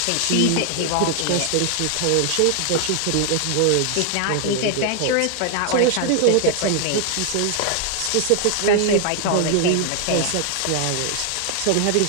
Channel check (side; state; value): both; different; correlation 0.00